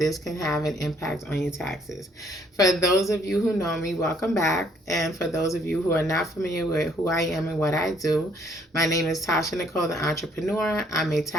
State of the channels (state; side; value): normal; both; correlation 0.64